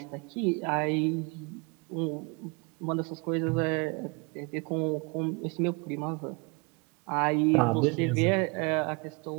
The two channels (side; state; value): left; quieter; 30.7 dB